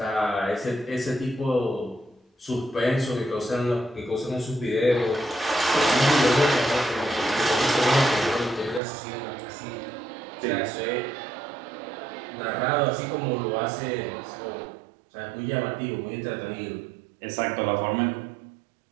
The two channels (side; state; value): left; drops out; at 8.8 s